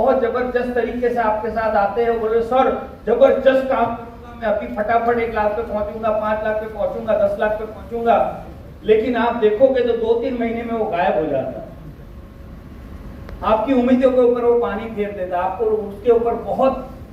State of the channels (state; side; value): identical; both; correlation 1.00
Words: जबरदस्त तरीके से आपके साथ आते हैं, बोले सर जबरदस्त काम करूंगा, मैं अभी फटाफट 1 लाख पे पहुंचूंगा, 5 लाख पे पहुंचूंगा, 10 लाख पे पहुंचूंगा। लेकिन आप देखोगे तो 2-3 महीने में वो गायब हो जाता है। आपकी उम्मीदों के ऊपर वो पानी फेर देता है, आपको उसके ऊपर बहुत